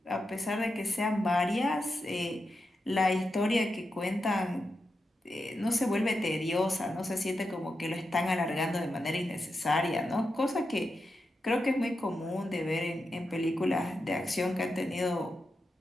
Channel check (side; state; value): both; normal; correlation 0.88